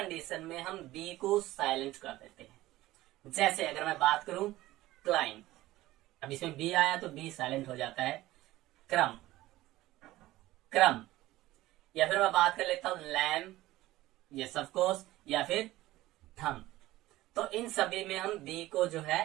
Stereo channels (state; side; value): quieter; left; 16.8 dB